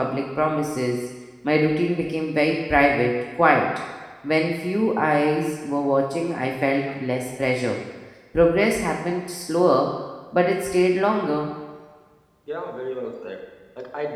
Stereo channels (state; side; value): identical; both; correlation 1.00